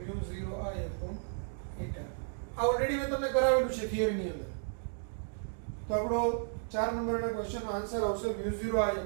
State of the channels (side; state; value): left; silent; digital silence